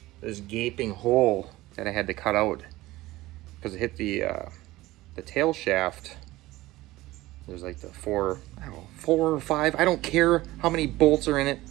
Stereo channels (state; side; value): quieter; left; 18.0 dB